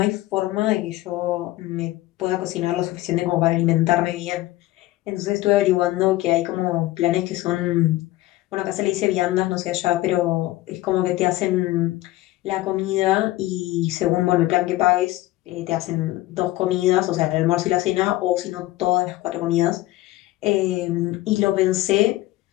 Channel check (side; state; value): right; quieter; 17.1 dB